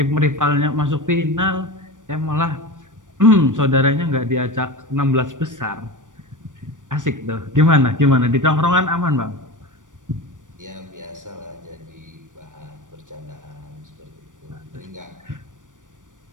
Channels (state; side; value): late; left; 0.87 ms